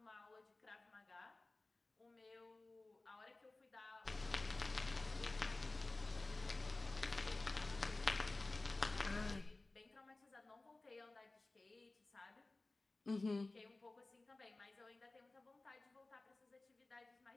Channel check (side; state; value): right; quieter; 3.1 dB